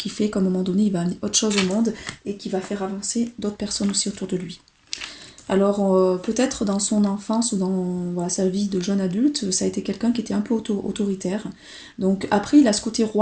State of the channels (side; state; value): both; identical; correlation 1.00